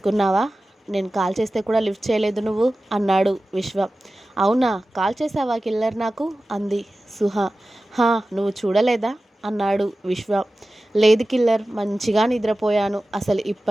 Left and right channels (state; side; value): normal; both; correlation 0.95